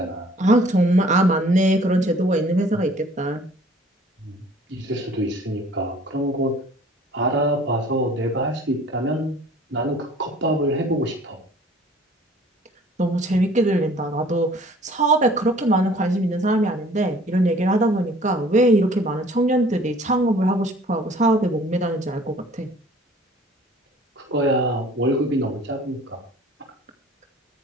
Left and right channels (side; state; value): both; normal; correlation 0.52